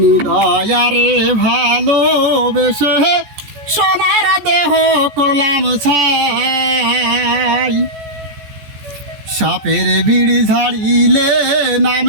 দয়ারে ভালোবেসে সোনার দেহ করলাম ছাই। সাপের বিড়ি ঝাড়িলে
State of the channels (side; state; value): left; late; 14 ms